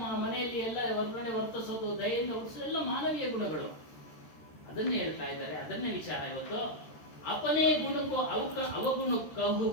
ಮನೆಯಲ್ಲಿ ಎಲ್ಲ ಹೊರಗಡೆ ವರ್ತಿಸೋದು, ದಯೆಯಿಂದ ವರ್ತಿಸೋದು ಎಲ್ಲ ಮಾನವೀಯ ಗುಣಗಳು. ಅದನ್ನೇ ಹೇಳ್ತಾ ಇದ್ದಾರೆ. ಅದನ್ನೇ ವಿಚಾರ ಇವತ್ತು. ಅಪನೇ ಗುಣಕ್ಕೂ ಅವಗುಣ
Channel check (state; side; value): late; right; 13 ms